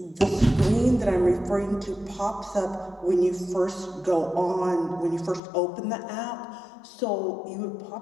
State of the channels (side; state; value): right; drops out; at 5.4 s